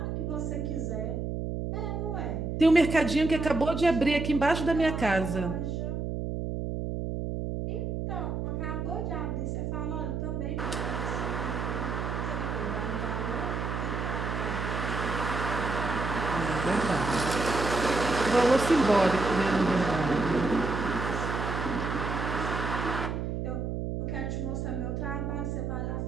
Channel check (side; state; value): right; noise; hum, 3 dB below the sound